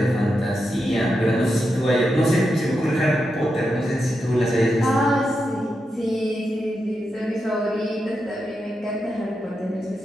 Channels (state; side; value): normal; both; correlation 0.87